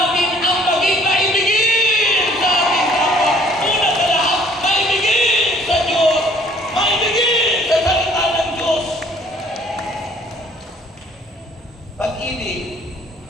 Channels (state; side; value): normal; both; correlation 0.58